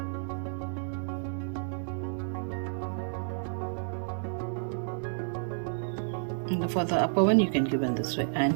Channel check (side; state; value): left; silent; digital silence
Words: And for the upper one, you can give in this way,